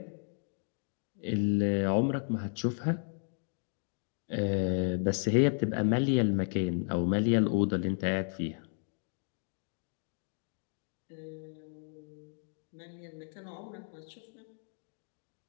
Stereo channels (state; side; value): silent; right; 55 dB below the other